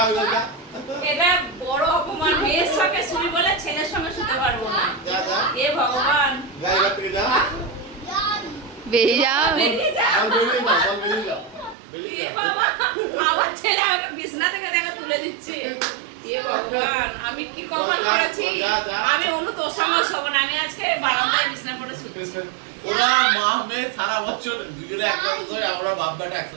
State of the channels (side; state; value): left; drops out; at 11.8 s